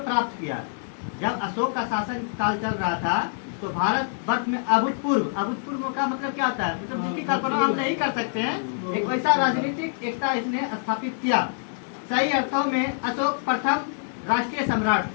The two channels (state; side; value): silent; right; digital silence